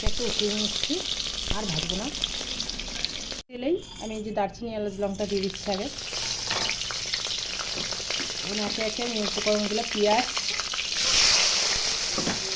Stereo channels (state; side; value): identical; both; correlation 1.00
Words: একটু উঠিয়ে নিচ্ছি, আর ভাজবো না। তেলেই আমি এই যে দারচিনি, এলাচ, লঙ্কা দিয়ে দিচ্ছি আগে। এখন একে একে আমি উপকরণগুলো পেঁয়াজ,